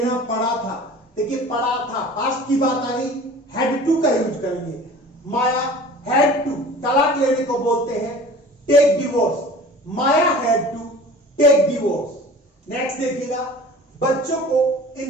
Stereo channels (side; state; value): both; normal; correlation 0.42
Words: पड़ा था। देखिए, पड़ा था, पास्ट की बात आ गई, हैड टू का यूज करेंगे। माया हैड टू, तलाक लेने को बोलते हैं take divorce. Maya had to take divorce. Next देखिएगा, बच्चों को